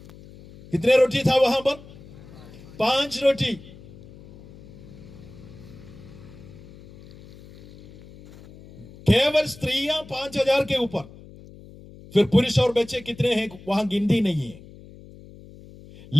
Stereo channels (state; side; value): noise; left; hum, 20 dB below the sound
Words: कितने रोटी था वहां पर? 5 रोटी। केवल स्त्रियां 5000 के ऊपर, फिर पुरुष और बच्चे कितने हैं वहां गिनती नहीं है।